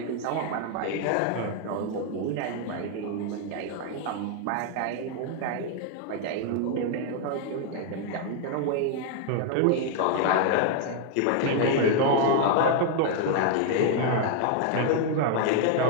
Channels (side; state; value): both; different; correlation 0.00